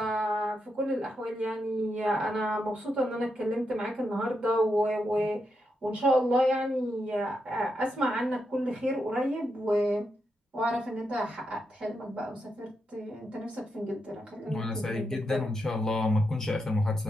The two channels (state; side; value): normal; both; correlation 0.84